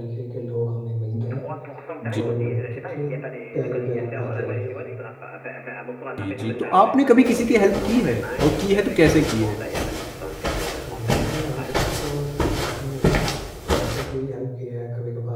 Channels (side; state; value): both; identical; correlation 1.00